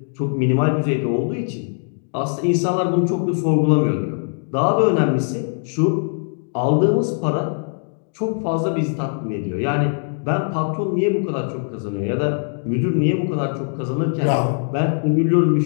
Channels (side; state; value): right; silent; 65 dB below the other